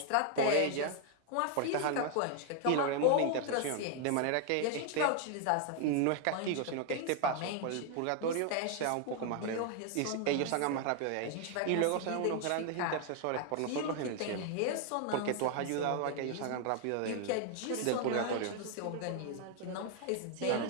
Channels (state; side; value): different; both; correlation 0.00